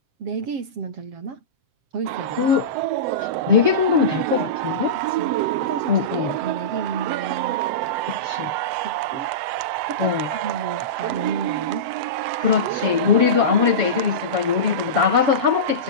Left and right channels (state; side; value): late; left; 7.9 ms